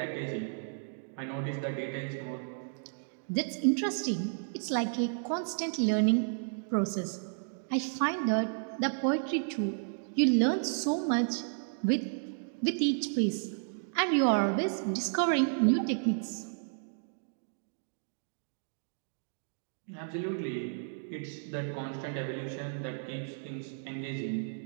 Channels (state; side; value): silent; left; digital silence